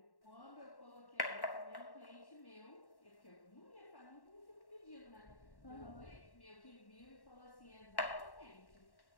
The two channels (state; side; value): late; right; 1.1 ms